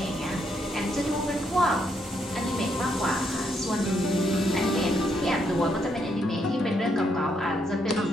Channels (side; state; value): both; normal; correlation 0.76